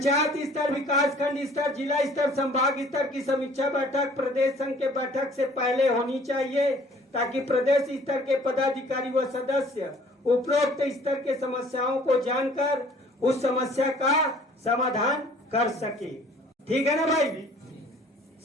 स्तर, विकास खंड स्तर, जिला स्तर, संभाग स्तर की समीक्षा बैठक प्रदेश संघ के बैठक से पहले होनी चाहिए, ताकि प्रदेश स्तर के पदाधिकारी व सदस्य उपरोक्त स्तर के समस्याओं को जानकर उस समस्या का समाधान कर सके। ठीक है ना भाई।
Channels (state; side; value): normal; both; correlation 0.54